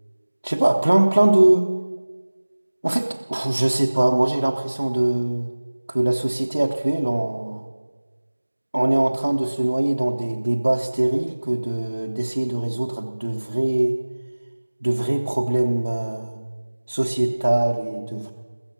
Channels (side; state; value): both; inverted; correlation -1.00